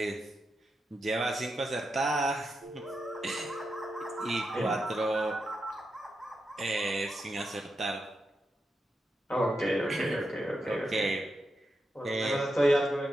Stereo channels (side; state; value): both; normal; correlation 0.86